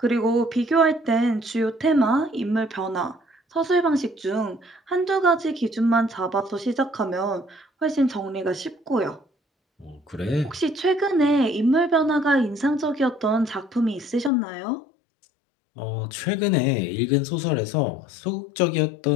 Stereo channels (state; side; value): drops out; right; at 14.3 s